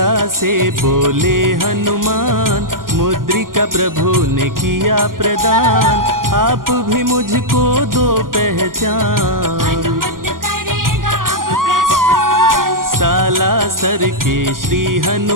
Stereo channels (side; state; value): left; late; 0.91 ms